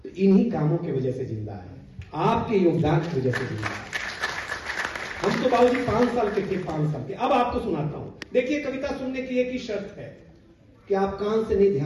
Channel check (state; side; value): identical; both; correlation 1.00